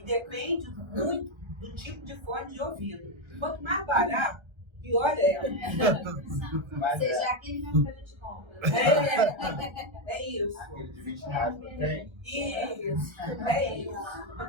depende muito do tipo de fone de ouvido. Quanto mais barato, pior é. Seja aquele mesmo que a gente compra. É isso. Aquele de 20 reais não tem? Isso, é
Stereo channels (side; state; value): left; late; 1.3 ms